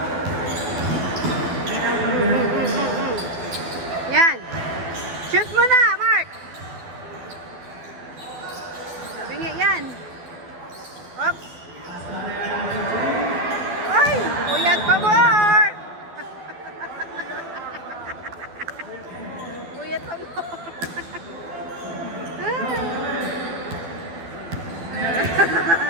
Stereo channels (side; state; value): left; late; 12 ms